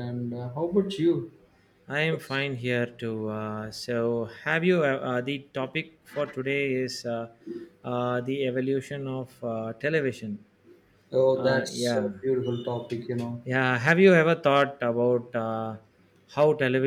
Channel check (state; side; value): identical; both; correlation 1.00